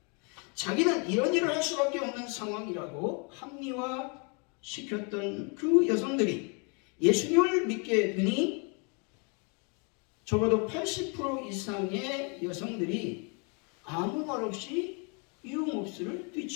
자기는 이런 일을 할 수밖에 없는 상황이라고 합리화시켰던 그 여성들이 예수님을 믿게 되니 적어도 80% 이상의 여성들이 아무 말 없이 유흥업소를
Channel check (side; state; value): right; quieter; 35.1 dB